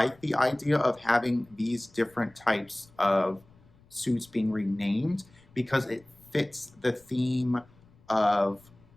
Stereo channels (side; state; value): left; noise; rumble, 28 dB below the sound